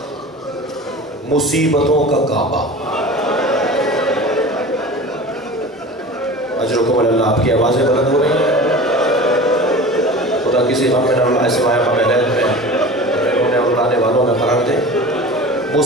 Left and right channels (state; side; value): normal; both; correlation 0.36